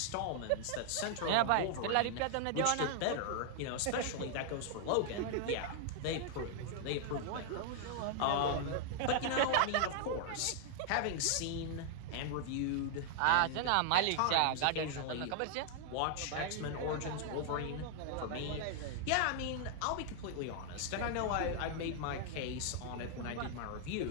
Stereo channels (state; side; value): different; both; correlation 0.00